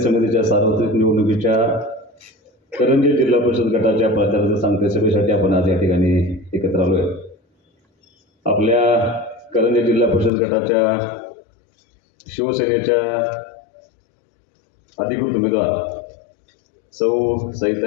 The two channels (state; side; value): drops out; right; at 10.3 s